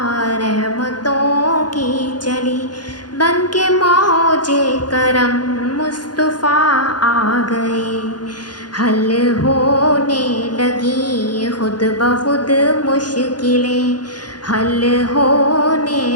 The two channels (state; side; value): late; right; 0.70 ms